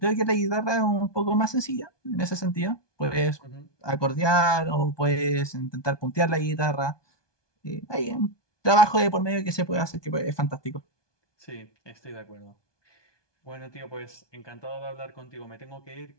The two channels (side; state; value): right; late; 1.2 ms